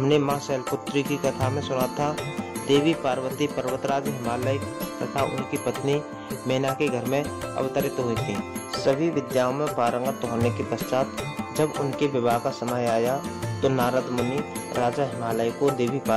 माँ शैलपुत्री की कथा में सुना था, देवी पार्वती पर्वतराज हिमालय तथा उनकी पत्नी मैना के घर में अवतरित हुई थी। सभी विद्याओं में पारंगत होने के पश्चात जब उनके विवाह का समय आया तो नारद मुनि राजा हिमालय को देवी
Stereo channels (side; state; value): both; identical; correlation 1.00